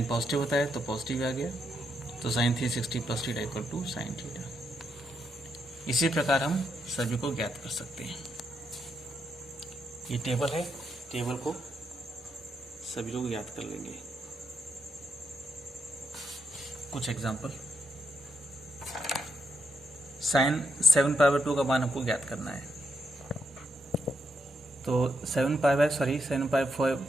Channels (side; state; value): both; normal; correlation 0.80